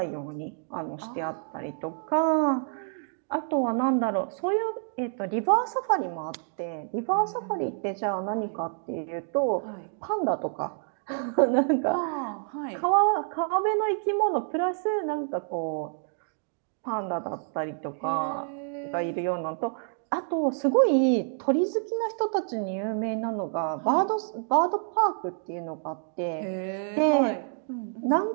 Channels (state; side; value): silent; left; digital silence